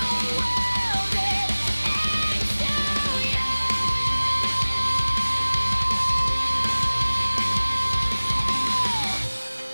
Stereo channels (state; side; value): inverted; both; correlation -1.00